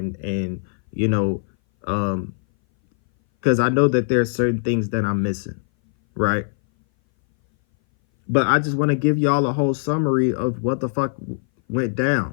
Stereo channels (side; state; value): right; silent; 59 dB below the other